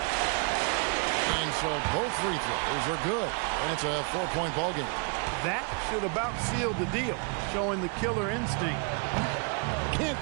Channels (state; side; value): quieter; left; 37.3 dB